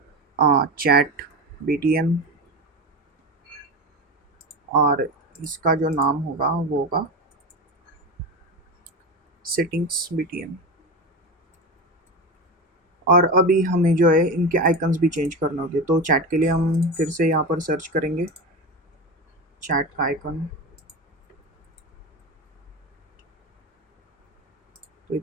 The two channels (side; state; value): both; normal; correlation 0.23